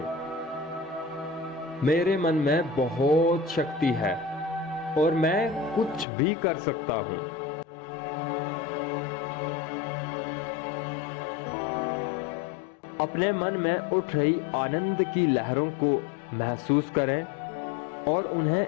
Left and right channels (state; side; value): drops out; right; at 6.1 s